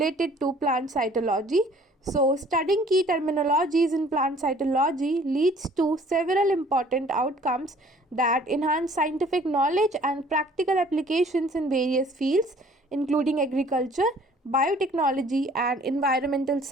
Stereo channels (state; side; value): normal; both; correlation 0.55